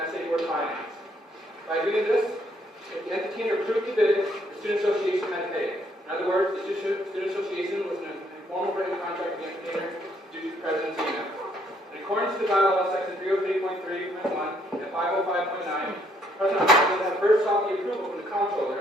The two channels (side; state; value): both; normal; correlation 0.69